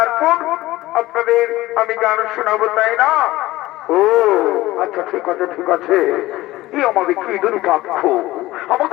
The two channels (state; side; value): quieter; right; 17.6 dB